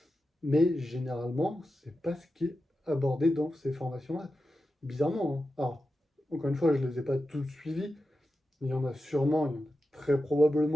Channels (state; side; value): normal; both; correlation 0.91